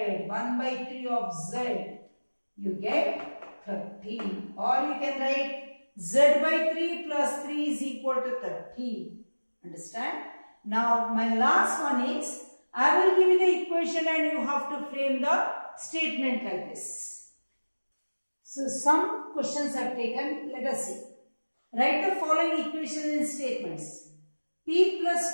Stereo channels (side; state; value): both; inverted; correlation -1.00